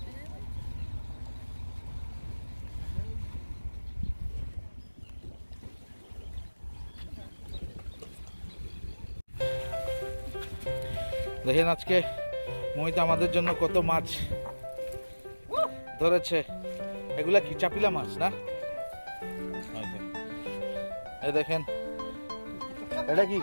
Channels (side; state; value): both; inverted; correlation -1.00